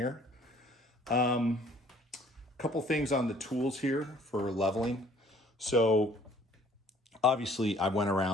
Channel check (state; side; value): normal; both; correlation 0.57